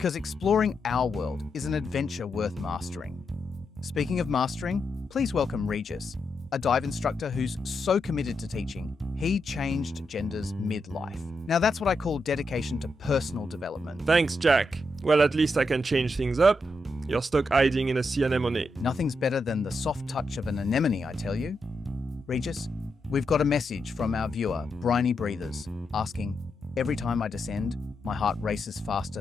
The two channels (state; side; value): normal; both; correlation 0.84